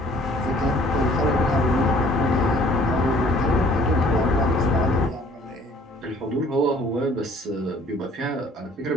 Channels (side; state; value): both; normal; correlation 0.56